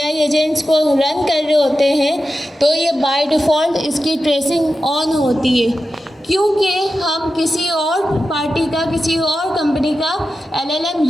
एजेंट्स को रन कर रहे होते हैं तो ये बाय डिफ़ॉल्ट इसकी ट्रेसिंग ऑन होती है, क्योंकि हम किसी और पार्टी का, किसी और कंपनी का एलएलएम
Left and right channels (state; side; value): normal; both; correlation 0.92